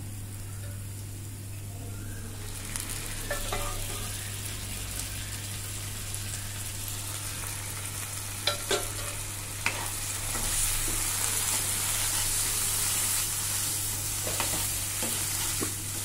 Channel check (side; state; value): both; identical; correlation 1.00